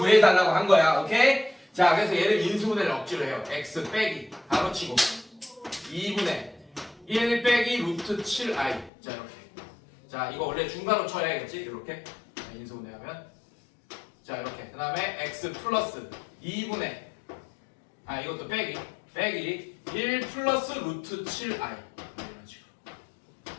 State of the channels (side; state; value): right; drops out; at 8.9 s